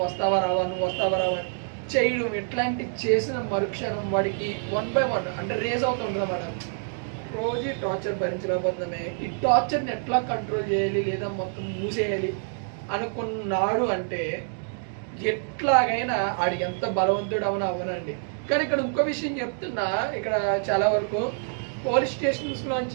వస్తావా రావా చేయడం, ఇట్లాంటి చేసిన మరుక్షణం వాడికి 1 by 1 అంటే రేజ్ అవుతుంది అన్నమాట. రోజు టార్చర్ భరించలేకపోతున్నామే, ఈ టార్చర్ని ఎట్లా కంట్రోల్ చేయాలి లేదా మొత్తం మూసేయాలి అనుకున్నాడు అంటే ఎట్లాగైనా ఆడికి ఎంత బలవంతుడు అవనండి. కానీ ఇక్కడ ఇంకో విషయం చెప్తున్నా, ఇక్కడ చాలా వరకు పోలీస్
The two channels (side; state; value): left; silent; digital silence